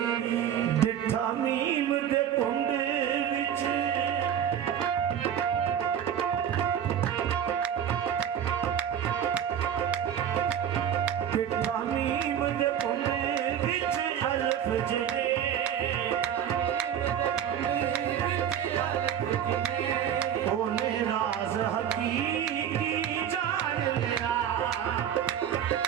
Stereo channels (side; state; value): left; quieter; 9.4 dB